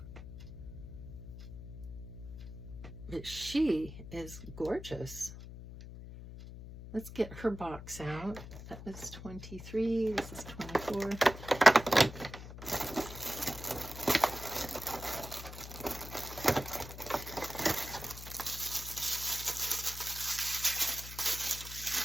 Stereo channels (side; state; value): left; noise; hum, 12 dB below the sound